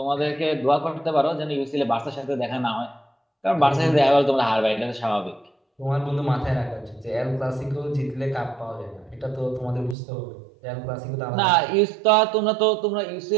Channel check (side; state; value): left; drops out; at 10.0 s